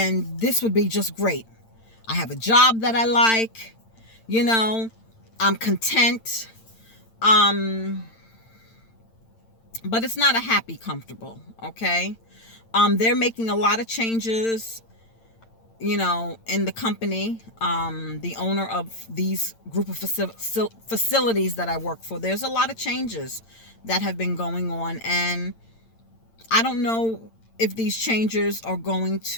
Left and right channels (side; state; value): right; late; 8.9 ms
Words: this would be just great. I have a job that I like, you know, I'm content. But it's not a happy comfortable, okay? They're making a lot of changes, you know, in the company. The owner of these group of facilities that I work for, there's a lot of changes that have been going on, and I don't know if these changes are going